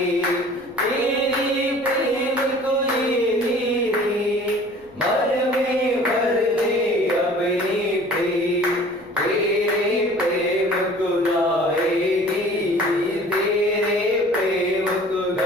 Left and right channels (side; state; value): left; noise; rumble, 28 dB below the sound